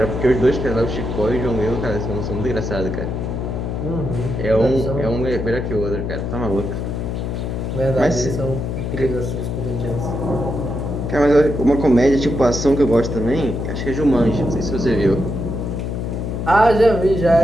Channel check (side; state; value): left; noise; hum, 3 dB below the sound